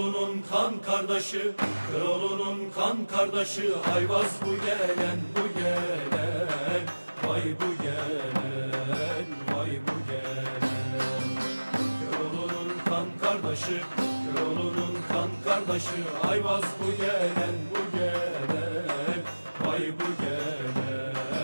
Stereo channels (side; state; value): both; inverted; correlation -1.00